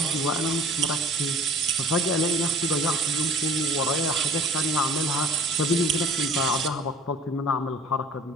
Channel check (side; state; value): both; normal; correlation 0.48